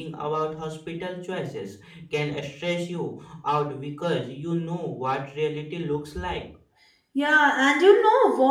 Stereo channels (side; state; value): both; identical; correlation 1.00